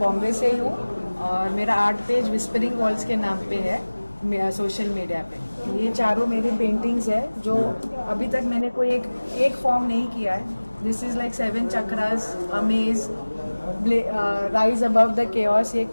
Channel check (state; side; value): inverted; both; correlation -1.00